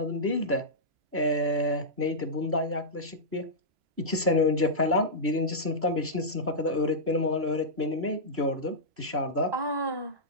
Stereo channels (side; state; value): left; late; 3.0 ms